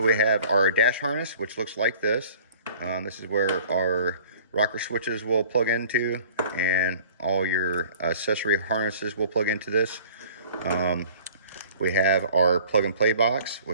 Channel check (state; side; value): inverted; both; correlation -0.48